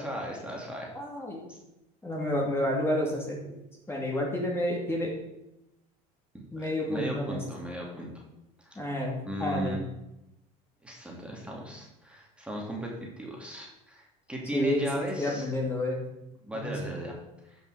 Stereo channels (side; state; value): both; normal; correlation 0.60